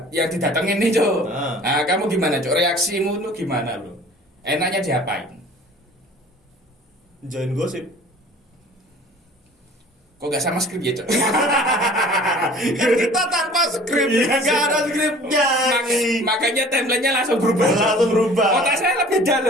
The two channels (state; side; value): normal; both; correlation 0.47